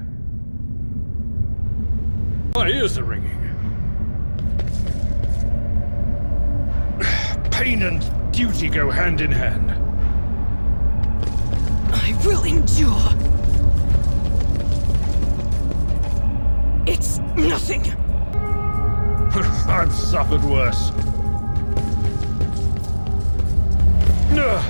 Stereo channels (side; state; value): both; inverted; correlation -1.00